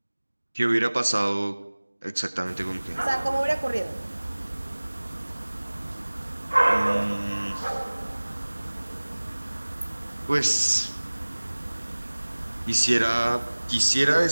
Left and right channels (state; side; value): inverted; both; correlation -1.00